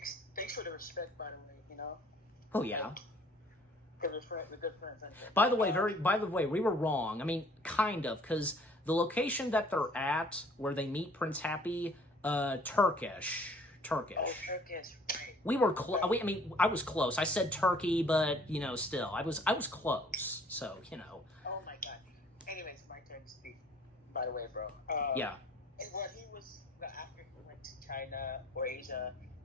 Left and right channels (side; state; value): both; normal; correlation 0.55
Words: for the respect, by the way, you know? Oh, yeah. We're good friends. By the way, we were wrong. I mean, kind of, because the location that they're at, where they meet Prince Happy, Turkish. Oh, Turkish, right. We were close. I mean, I was close. I said Turkey, but, you know, still, I was close. So, you know. Oh my God. Anyways, my turn to speak. By the way, bro. Yeah. And when he was after he went to China or Asia,